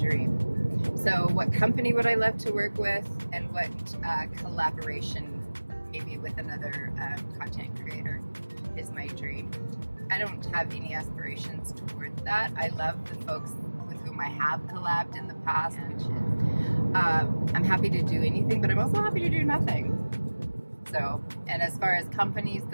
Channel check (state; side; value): inverted; both; correlation -1.00